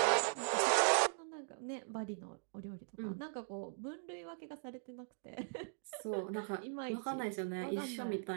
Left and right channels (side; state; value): left; silent; digital silence